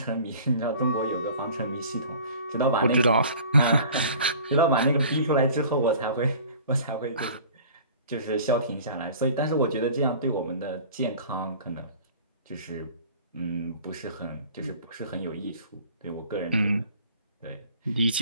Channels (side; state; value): both; inverted; correlation -0.45